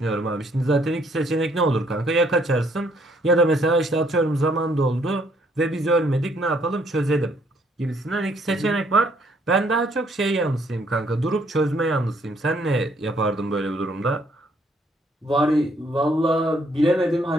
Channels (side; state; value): both; normal; correlation 0.67